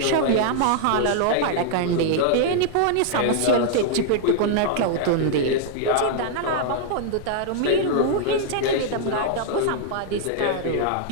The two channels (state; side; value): different; both; correlation -0.01